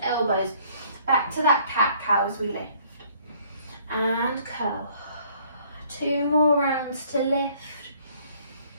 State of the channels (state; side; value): inverted; both; correlation -0.60